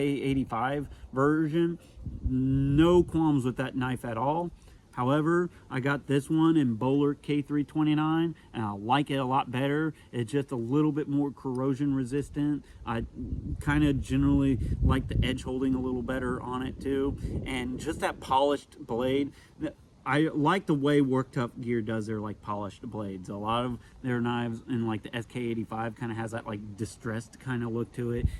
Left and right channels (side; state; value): both; identical; correlation 1.00